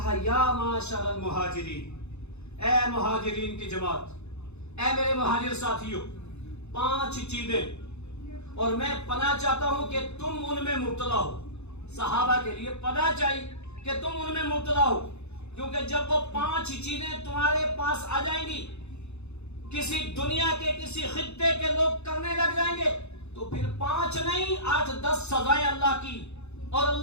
یا معاشر المہاجرین، اے مہاجرین کی جماعت، اے میرے مہاجر ساتھیوں، 5 چیزیں اور میں پناہ چاہتا ہوں کہ تم ان میں مبتلا ہو۔ صحابہ کے لیے پناہ چاہیے کہ تم ان میں مبتلا ہو، کیونکہ جب وہ 5 چیزیں تمہارے پاس آ جائیں گی، کسی دنیا کے کسی خطے کے لوگ کرنے لگ جائیں گے، تو پھر 5 نہیں 8-10 سزائیں اللہ کی اور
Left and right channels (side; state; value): right; late; 0.81 ms